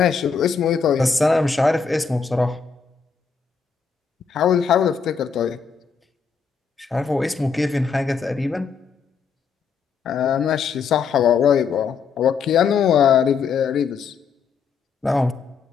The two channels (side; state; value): right; quieter; 5.8 dB